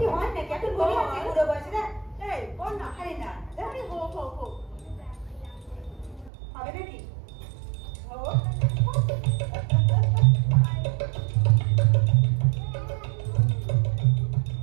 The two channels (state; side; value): drops out; left; at 6.3 s